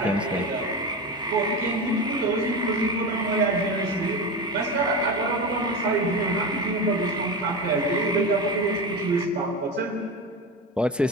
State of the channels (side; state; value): both; normal; correlation 0.22